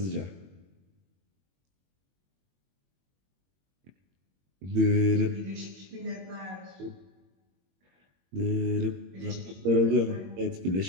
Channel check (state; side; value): late; left; 21 ms